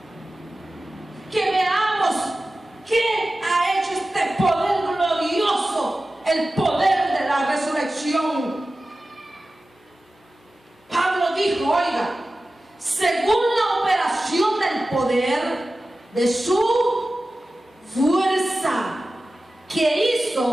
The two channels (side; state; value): both; normal; correlation 0.95